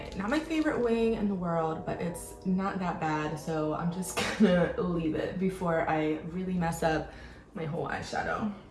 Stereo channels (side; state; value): both; identical; correlation 1.00